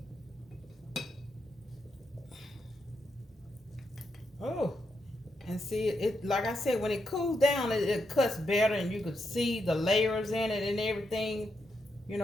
Oh, and see it like I said, when it cools down, it cuts better, and you could see the layers in it and everything. You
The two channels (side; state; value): both; normal; correlation 0.82